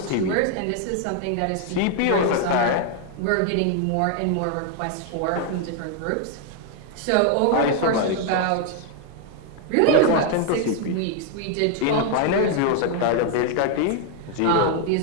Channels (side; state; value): both; different; correlation 0.00